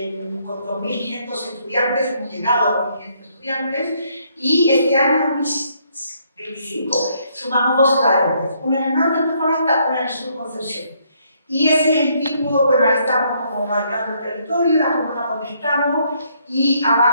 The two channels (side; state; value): both; inverted; correlation -0.70